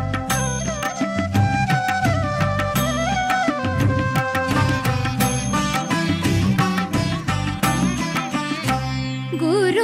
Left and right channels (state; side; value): identical; both; correlation 1.00